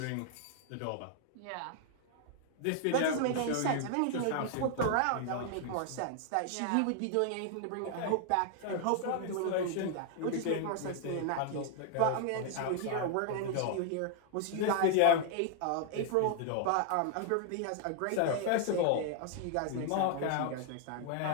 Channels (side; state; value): both; different; correlation 0.00